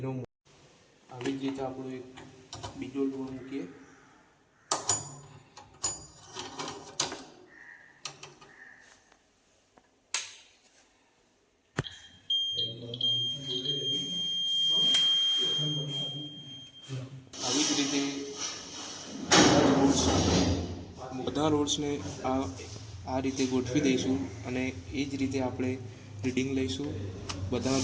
આવી જ રીતે આપણો એક બીજો લોડ મૂકીએ. આવી જ રીતે બધા રોડ્સને આ રીતે ગોઠવી દઈશું અને એ જ રીતે આપણે રીડિંગ લઈશું. બધા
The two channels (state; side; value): identical; both; correlation 1.00